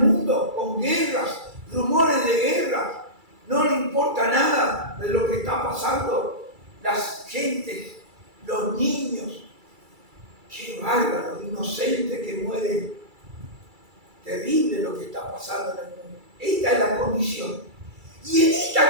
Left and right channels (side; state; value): left; late; 2.3 ms